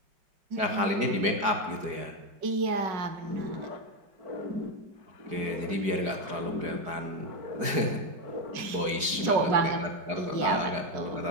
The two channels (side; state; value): left; late; 4.9 ms